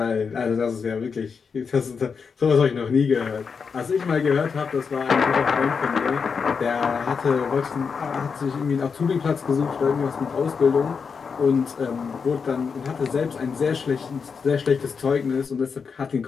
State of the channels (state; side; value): quieter; right; 5.7 dB